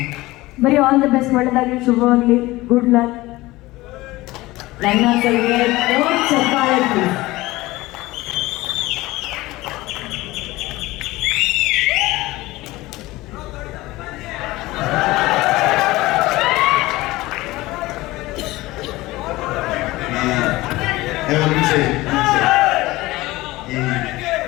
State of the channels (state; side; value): quieter; right; 19.3 dB